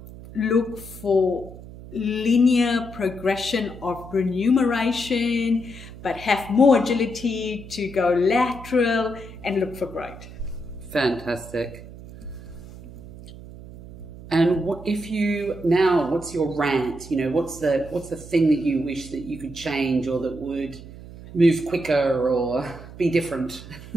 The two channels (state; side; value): noise; right; hum, 15 dB below the sound